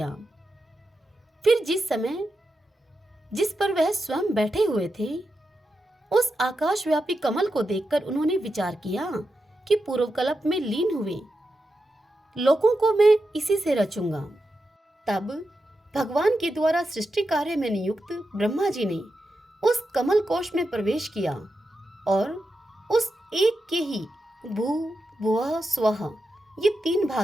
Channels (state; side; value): normal; both; correlation 0.88